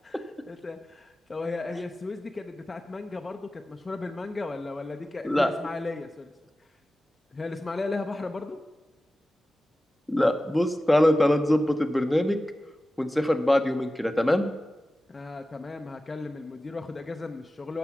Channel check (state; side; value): normal; both; correlation 0.95